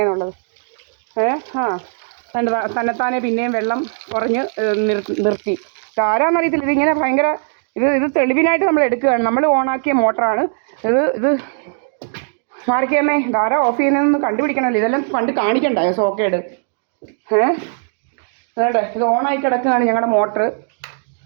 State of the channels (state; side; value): silent; left; digital silence